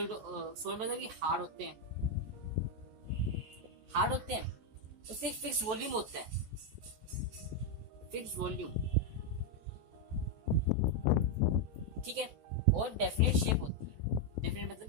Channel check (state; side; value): late; left; 14 ms